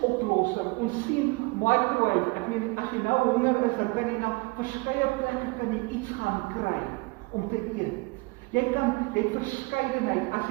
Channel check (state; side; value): quieter; left; 26.0 dB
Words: Ons sien microwave, ek meen, as jy nou honger is, dan kan jy na verskeie plekke kan jy iets gaan kry om te eet. Jy het verskeidenheid. As